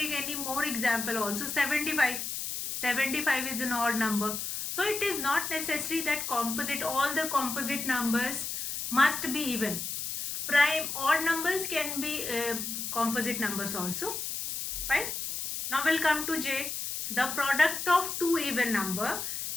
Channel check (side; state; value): left; noise; hiss, 4 dB below the sound